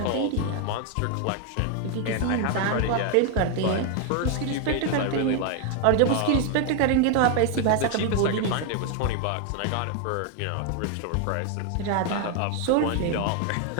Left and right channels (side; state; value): both; different; correlation 0.01